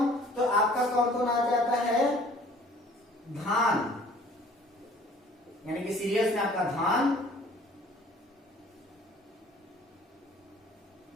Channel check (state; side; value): normal; both; correlation 0.53